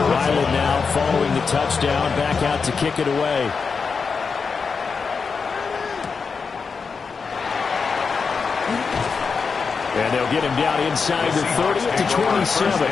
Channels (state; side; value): quieter; right; 5.3 dB